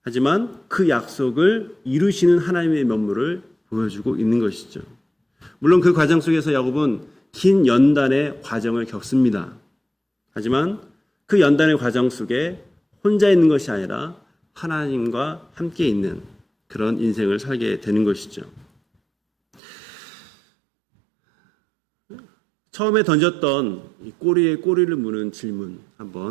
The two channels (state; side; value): drops out; left; at 19.6 s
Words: 하지만 그 약속을 이루시는 하나님의 면모를 보여주고 있는 것이죠. 물론 그 과정 속에서 야곱은 긴 연단의 과정을 겪습니다. 하지만 그 연단의 과정 속에 혼자 있는 것이 아니라 하나님과 함께 있는 그런 인생을 살게 되는 것이죠. 처음에 던졌던 이 꼬리에 꼬리를 무는 질문